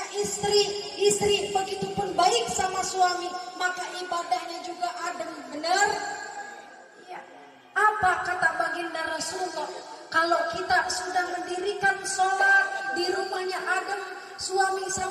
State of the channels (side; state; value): both; identical; correlation 1.00